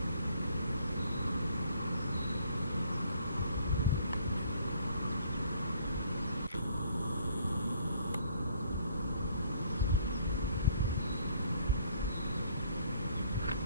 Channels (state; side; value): inverted; both; correlation -0.62